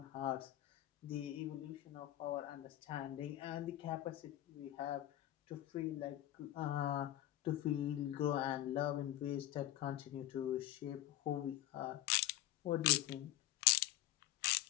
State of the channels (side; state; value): right; quieter; 14.3 dB